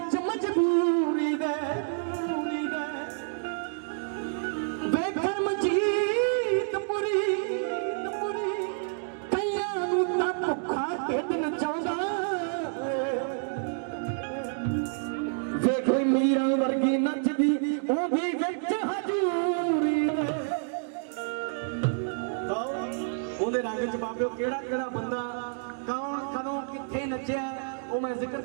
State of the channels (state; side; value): silent; left; digital silence